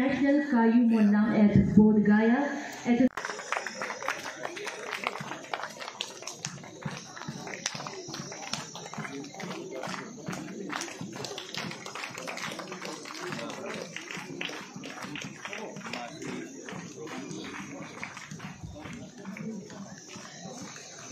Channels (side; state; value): both; identical; correlation 1.00